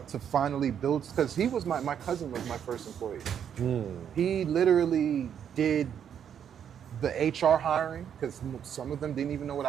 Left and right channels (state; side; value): quieter; left; 8.6 dB